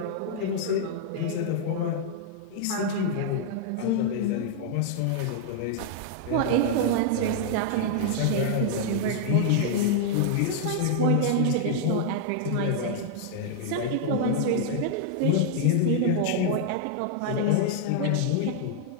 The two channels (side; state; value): both; different; correlation -0.01